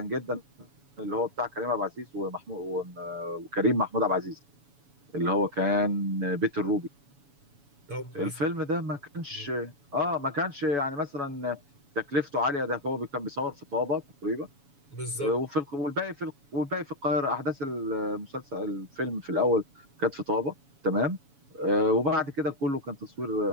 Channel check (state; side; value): late; left; 7.1 ms